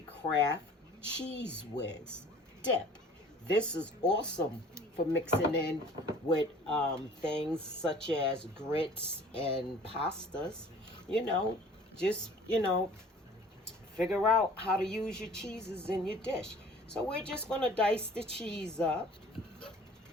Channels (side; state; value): both; normal; correlation 0.49